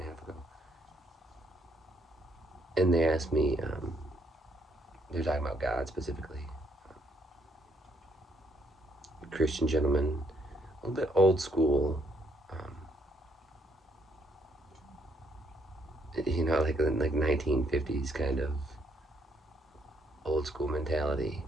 a half ago, and they asked me. They're talking about God specifically. Christian gentleman, a little bit old school. Like 1950s kind of old school mentality.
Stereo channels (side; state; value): both; normal; correlation 0.71